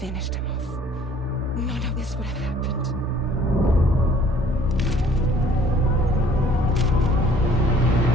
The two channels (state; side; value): normal; both; correlation 0.56